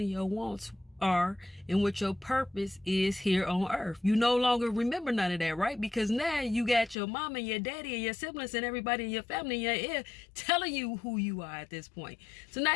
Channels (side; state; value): right; drops out; at 7.0 s